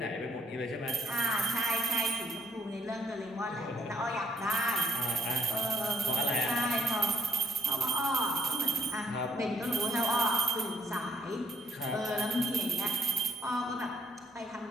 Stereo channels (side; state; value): both; normal; correlation 0.71